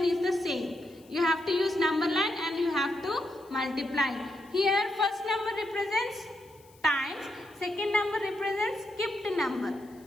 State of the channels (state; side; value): noise; left; hiss, 28 dB below the sound